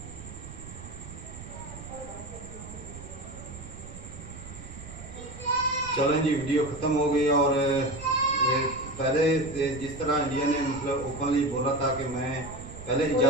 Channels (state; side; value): noise; right; rumble, 13 dB below the sound